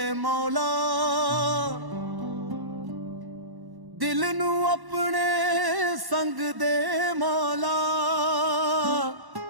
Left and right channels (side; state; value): left; late; 1.1 ms